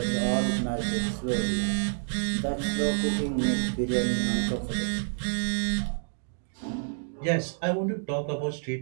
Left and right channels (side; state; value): left; silent; digital silence